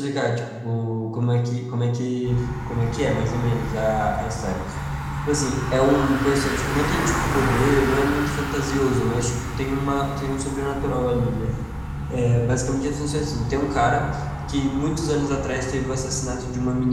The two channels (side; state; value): both; identical; correlation 1.00